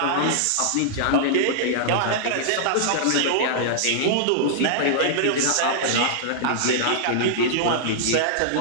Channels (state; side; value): different; both; correlation -0.02